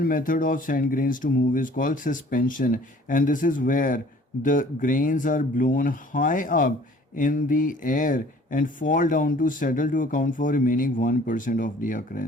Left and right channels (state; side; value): normal; both; correlation 0.52